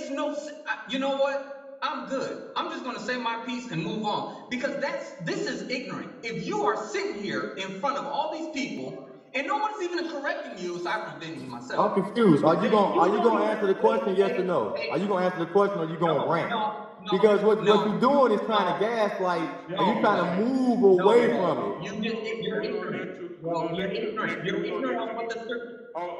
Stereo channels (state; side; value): identical; both; correlation 1.00